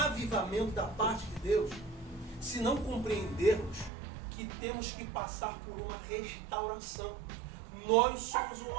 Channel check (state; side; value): drops out; left; at 3.9 s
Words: da parte de Deus se não compreendermos que temos que passar por uma restauração. Nós somos o